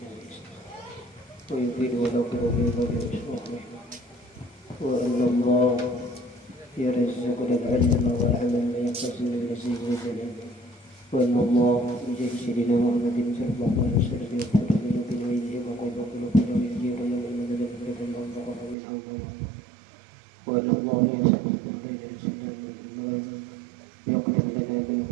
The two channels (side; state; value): left; drops out; at 18.8 s